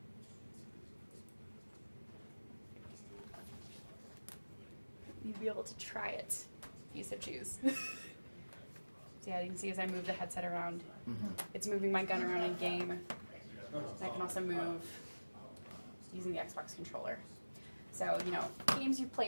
You'll be able to try it if you so choose. So yeah, you can see as I move the headset around, it's moving my gun around in game. And I can also move using the Xbox controller. So, you know, games you've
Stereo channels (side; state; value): both; inverted; correlation -1.00